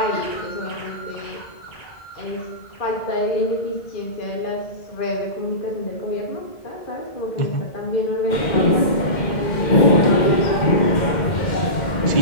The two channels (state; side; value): late; right; 2.1 ms